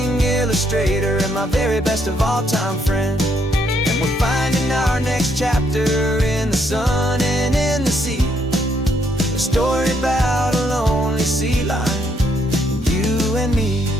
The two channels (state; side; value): normal; both; correlation 0.73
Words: illustrator and my very best of all time friend. We're finding our next chapter in the sun and in the sea, a story about a lonely sea lion, you and me.